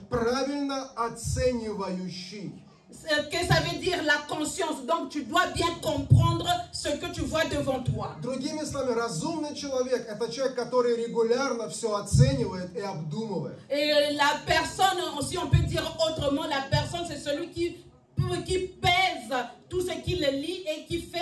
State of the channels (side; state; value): both; identical; correlation 1.00